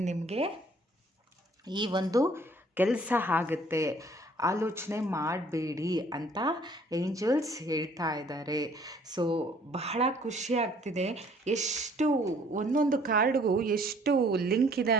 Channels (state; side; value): normal; both; correlation 0.58